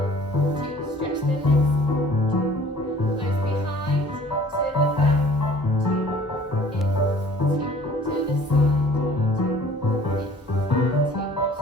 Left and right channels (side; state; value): both; normal; correlation 0.52